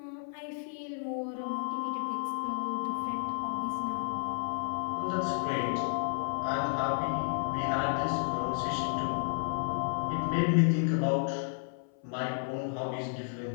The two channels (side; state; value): right; silent; 56 dB below the other